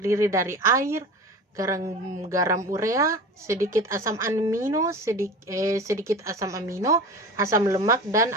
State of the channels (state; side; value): normal; both; correlation 0.33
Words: dari air, garam urea, sedikit asam amino, asam lemak, dan